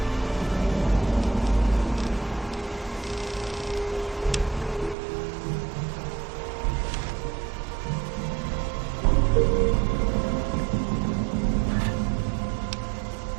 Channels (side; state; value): left; drops out; at 5.0 s